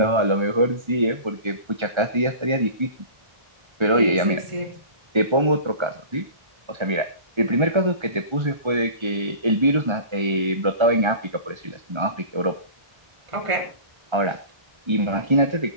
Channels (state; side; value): late; left; 1.3 ms